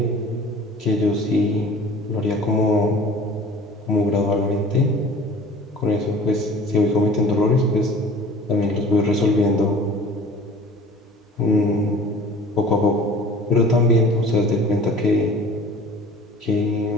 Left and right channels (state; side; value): normal; both; correlation 0.45